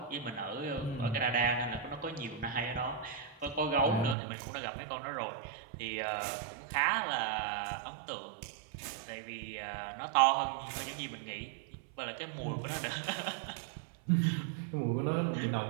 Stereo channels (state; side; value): drops out; left; at 4.2 s